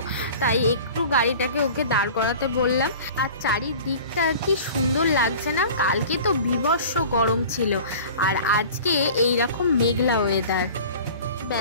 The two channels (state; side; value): inverted; both; correlation -0.41